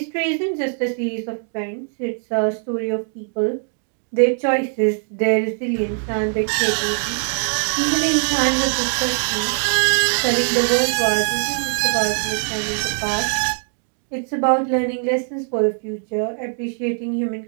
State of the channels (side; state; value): left; silent; 62 dB below the other